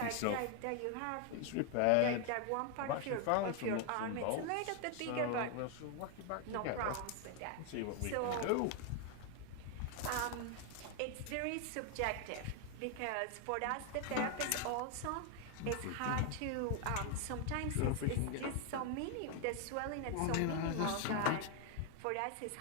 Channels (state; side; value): different; both; correlation 0.00